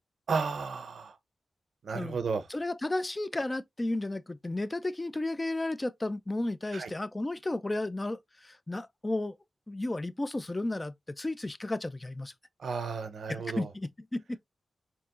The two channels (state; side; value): normal; both; correlation 0.94